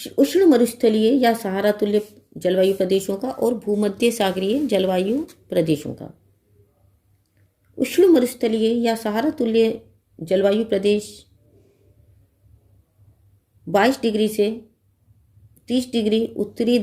उष्ण मरुस्थलीय या सहारा तुल्य जलवायु प्रदेशों का और भूमध्य सागरीय जलवायु प्रदेशों का। उष्ण मरुस्थलीय या सहारा तुल्य जलवायु प्रदेश 22 डिग्री से 30 डिग्री उत्तरी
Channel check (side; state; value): both; identical; correlation 1.00